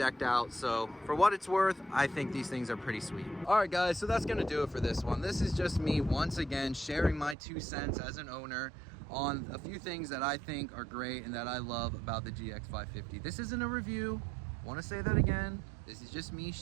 out. So for what it's worth, I think these things are pretty sweet. All right, guys, so that's gonna do it for this one. This is just me once again sharing my 2 cents as an owner on a few things that I think are great and that I love about the GX 550. This isn't a review. Want to say that again. This is just me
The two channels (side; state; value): left; drops out; at 7.4 s